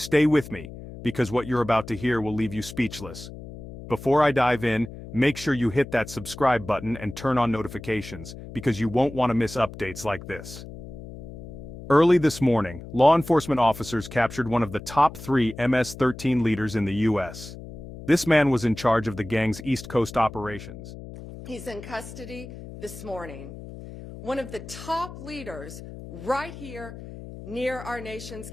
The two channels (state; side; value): noise; left; hum, 13 dB below the sound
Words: with me, because what you're about to hear will leave you speechless. Before I dive in, make sure you hit that subscribe button and turn on notifications, because you won't want to miss updates like this. Early this morning, law enforcement officers captured one of the top 3 MS-13 leaders in the U.S. This man was in charge of the gang's East Coast operations. He's in custody this morning. One of the top leaders right here near our nation's